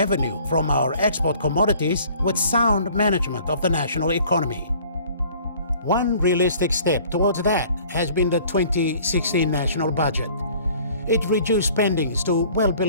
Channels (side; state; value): both; inverted; correlation -0.52